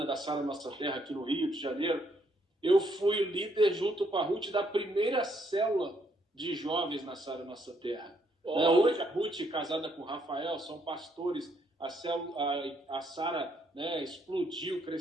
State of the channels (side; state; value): both; normal; correlation 0.72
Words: da Sara Nossa Terra, aqui no Rio de Janeiro. Eu fui o líder, junto com a Ruth, da primeira célula de jovens na Sara Nossa Terra. Hoje a Ruth, casada com o Rafael, são pastores. A Sara, né, explodiu,